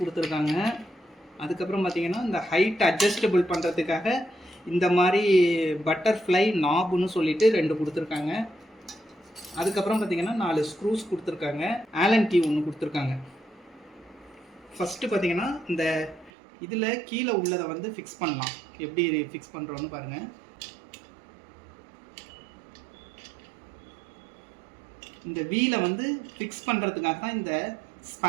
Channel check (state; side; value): drops out; left; at 16.3 s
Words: அதுக்கப்புறம் பார்த்தீங்கன்னா இந்த ஹைட் அட்ஜஸ்டபிள் பண்ணுறதுக்காக இந்த மாதிரி பட்டர்ஃப்ளை நாபுன்னு சொல்லிட்டு 2 கொடுத்துருக்காங்க. அதுக்கப்புறம் பார்த்தீங்கன்னா 4 ஸ்க்ரூஸ் கொடுத்துருக்காங்க. ஆலன் கீ 1 கொடுத்துருக்காங்க. ஃபஸ்ட்டு பார்த்தீங்கன்னா இந்த இதில் கீழே உள்ளதை வந்து ஃபிக்ஸ் பண்ணலாம். எப்படி ஃபிக்ஸ் பண்ணுறோன்னு பாருங்கள். இந்த வீலை வந்து ஃபிக்ஸ் பண்ணுறதுக்காக தான் இந்த